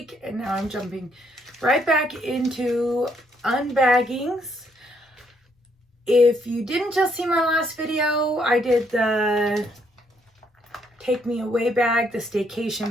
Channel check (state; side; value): normal; both; correlation 0.71